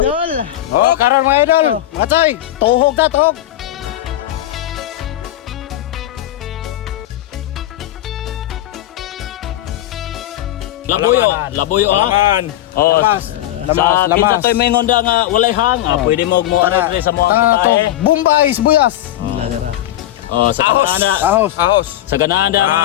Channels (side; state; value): right; quieter; 13.6 dB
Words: Karon mga idol. Mga tsoy, tuhog ta tuhog. Labuyo ha. Oh, lamas. Kita to'y may ngonda nga walay hang. Pwede mo mo ara sa mo ang tae. Bombay, sibuyas. Ladara. Oh, sa kanana. Ahos. Sa